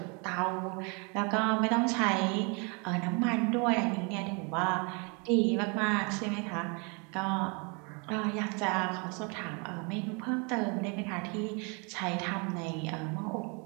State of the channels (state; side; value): quieter; left; 32.9 dB